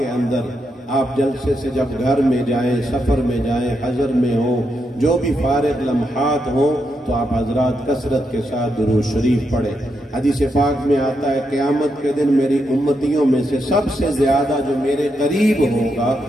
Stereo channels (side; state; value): both; normal; correlation 0.82